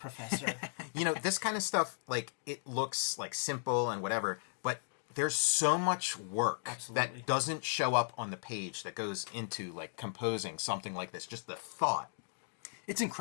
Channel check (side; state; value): right; silent; digital silence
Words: This kind of stuff, it looks simple and whatever, but there's so much work that doesn't show up on the page that goes into composing something like this. Just the thought. It's